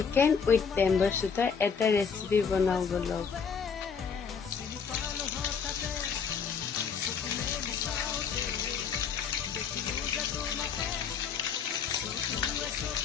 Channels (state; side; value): quieter; right; 6.3 dB